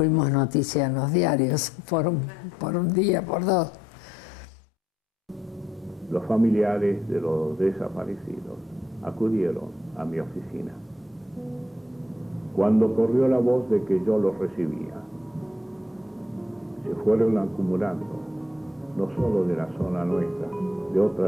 noticia en los diarios por un día, por 2. Los familiares de los desaparecidos acudieron a mi oficina. Cuando corrió la voz de que yo los recibía, se fueron acumulando, no solo de la zona nuestra, de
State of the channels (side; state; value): both; normal; correlation 0.74